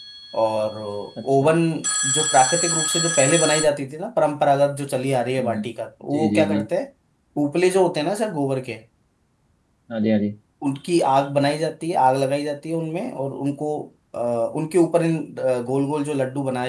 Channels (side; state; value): both; identical; correlation 1.00